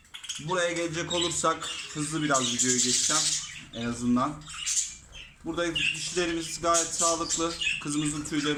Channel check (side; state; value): both; identical; correlation 1.00